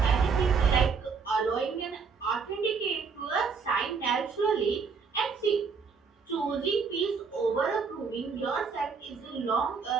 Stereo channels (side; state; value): left; quieter; 5.4 dB